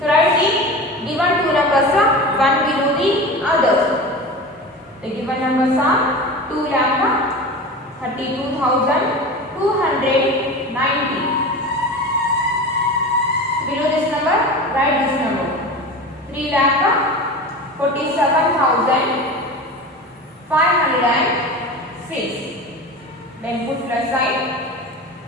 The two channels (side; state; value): both; normal; correlation 0.31